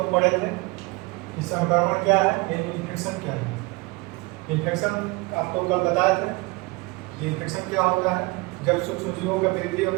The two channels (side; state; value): left; quieter; 25.4 dB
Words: पढ़े थे कि संक्रमण क्या है, यानी इन्फेक्शन क्या है। इन्फेक्शन आपको कल बताए थे कि इन्फेक्शन क्या होता है। जब सूक्ष्मजीवों का वृद्धि और